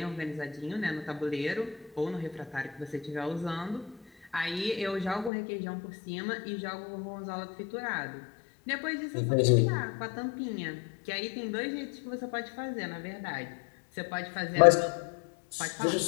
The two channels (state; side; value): drops out; right; at 5.3 s